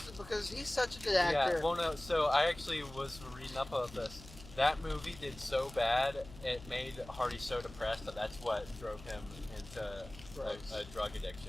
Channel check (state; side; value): noise; left; hum, 17 dB below the sound